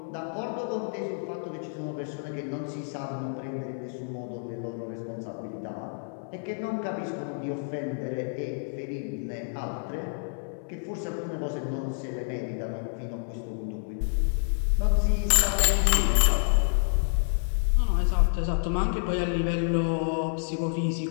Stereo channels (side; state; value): right; silent; 59 dB below the other